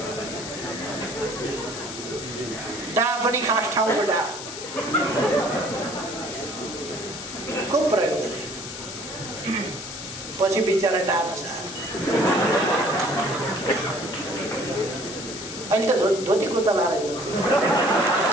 डा पनि खास ठाउँको डा को प्रयोग गरे, पछि बिचरा डा नसार। अहिले त धोती कुर्ता लाएर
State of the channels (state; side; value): noise; left; hiss, 9 dB below the sound